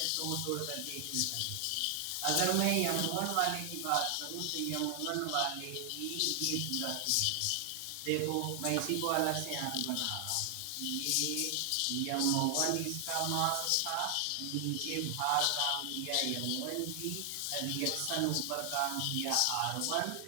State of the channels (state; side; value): different; both; correlation 0.00